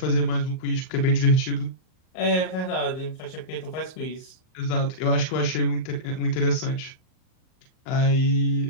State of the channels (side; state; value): right; late; 39 ms